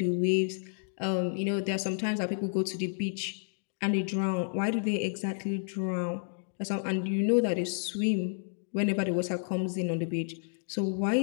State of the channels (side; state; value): right; silent; digital silence